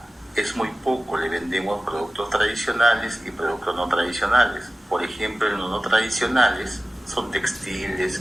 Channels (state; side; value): normal; both; correlation 0.97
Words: es muy poco. Le vendemos productos tradicionales y productos no tradicionales. Por ejemplo, los no tradicionales son textiles,